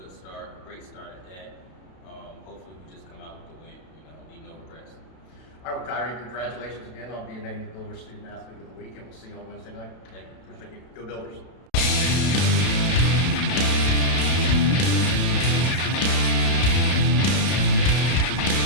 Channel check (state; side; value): late; right; 32 ms